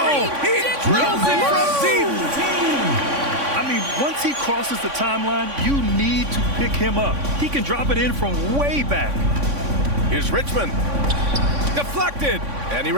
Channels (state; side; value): late; left; 3.5 ms